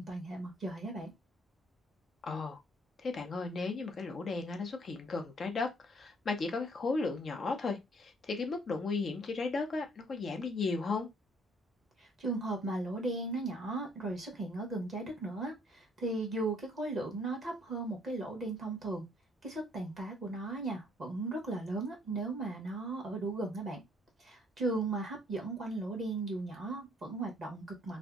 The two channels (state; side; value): normal; both; correlation 0.63